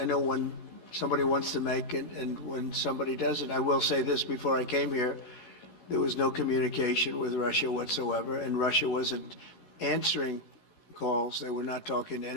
know when somebody wants to make and when somebody doesn't. I will say this, before I came here, there was no communication with Russia whatsoever, and Russia wasn't answering calls. They were not talking to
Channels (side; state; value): right; late; 16 ms